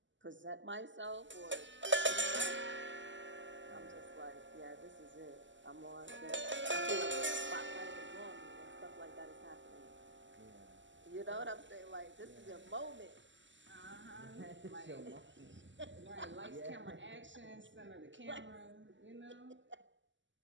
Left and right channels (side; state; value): left; late; 0.54 ms